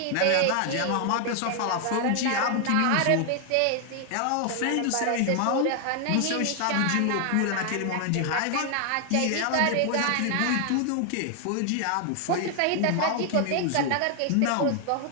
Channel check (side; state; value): both; different; correlation 0.00